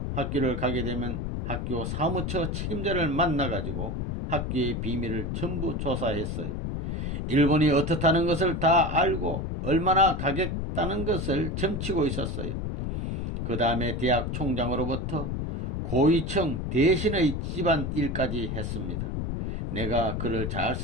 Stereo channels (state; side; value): noise; left; rumble, 3 dB below the sound